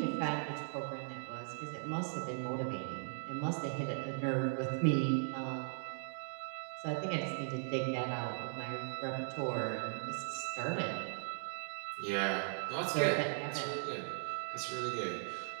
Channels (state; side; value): silent; left; digital silence